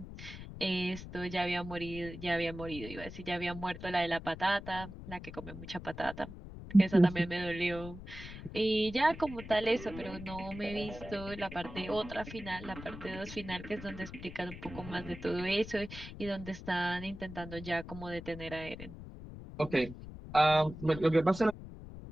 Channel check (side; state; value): left; noise; rumble, 12 dB below the sound